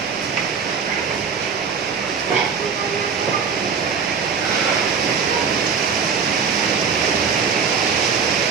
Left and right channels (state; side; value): quieter; left; 6.1 dB